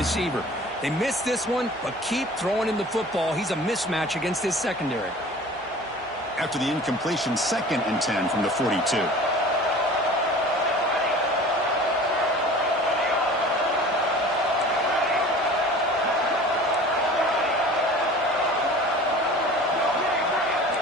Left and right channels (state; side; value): normal; both; correlation 0.42